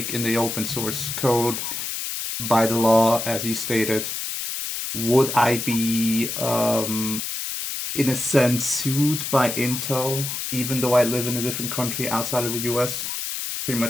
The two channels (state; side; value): noise; left; hiss, 4 dB below the sound